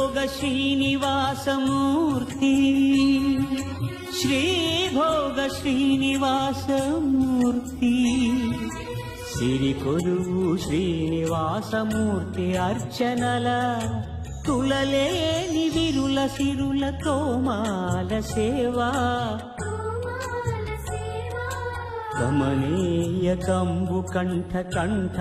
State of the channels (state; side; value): identical; both; correlation 1.00